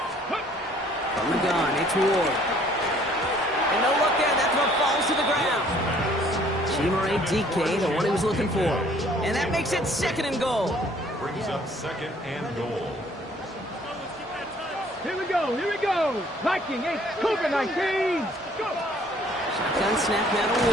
From the gun, it's Ward. And no look there, that throw falls to the ground. Chimere DK, the one he was looking for. And that makes it 2nd and goal. Brings up 2nd and goal. Here we go. Here we go. Viking 8, Cougar 19. Go. Shotgun snap now to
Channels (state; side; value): normal; both; correlation 0.58